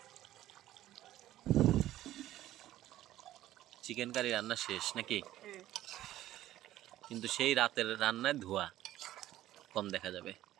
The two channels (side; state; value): left; quieter; 14.0 dB